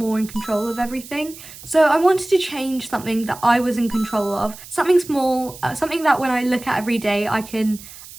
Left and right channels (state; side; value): noise; right; hiss, 17 dB below the sound